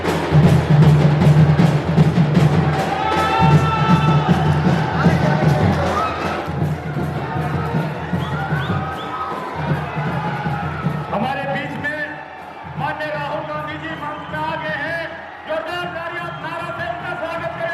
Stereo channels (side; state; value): both; identical; correlation 1.00